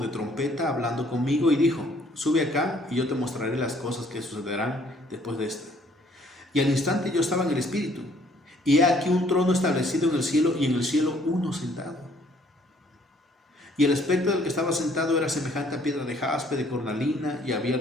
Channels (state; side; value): normal; both; correlation 0.62